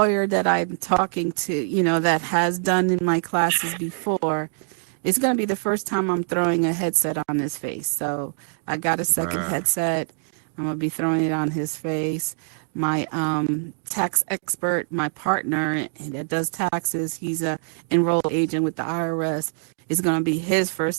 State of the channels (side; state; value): left; silent; digital silence